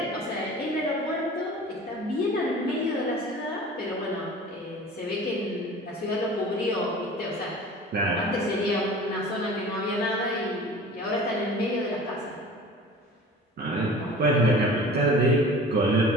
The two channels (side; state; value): both; normal; correlation 0.41